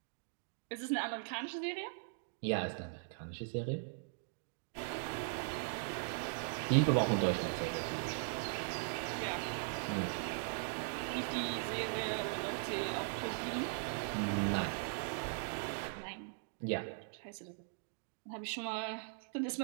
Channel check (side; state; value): left; silent; digital silence